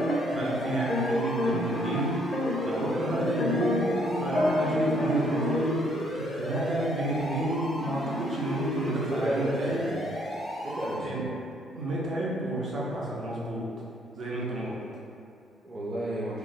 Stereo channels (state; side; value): normal; both; correlation 0.66